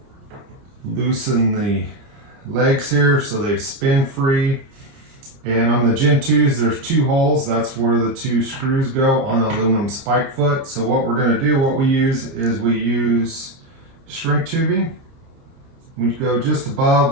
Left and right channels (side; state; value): left; late; 29 ms